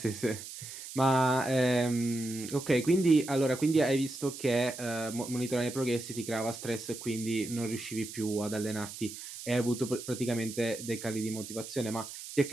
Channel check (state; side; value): noise; right; hiss, 11 dB below the sound